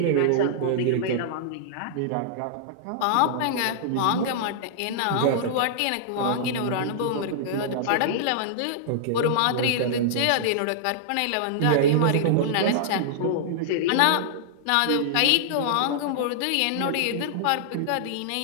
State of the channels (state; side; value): different; both; correlation -0.01